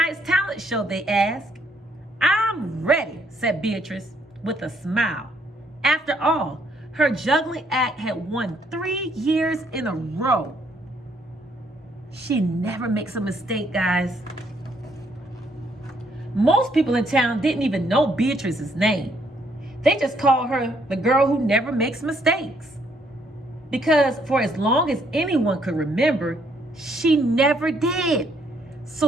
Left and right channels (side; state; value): both; normal; correlation 0.69